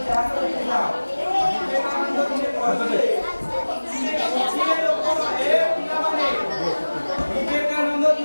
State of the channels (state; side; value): inverted; both; correlation -1.00